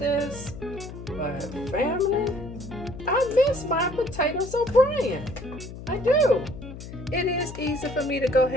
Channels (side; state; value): left; noise; hum, 12 dB below the sound